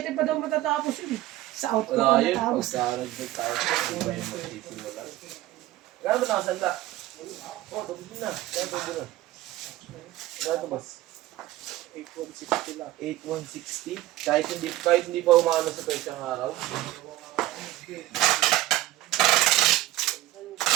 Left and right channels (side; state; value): left; quieter; 16.0 dB